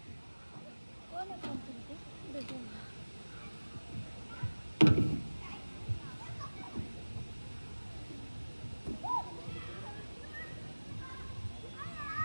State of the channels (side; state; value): both; inverted; correlation -1.00